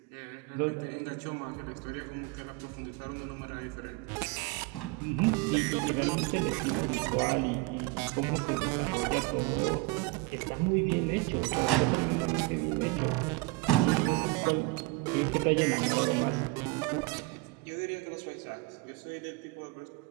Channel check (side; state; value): left; quieter; 22.8 dB